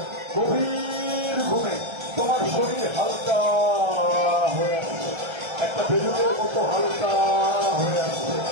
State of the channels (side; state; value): left; late; 1.3 ms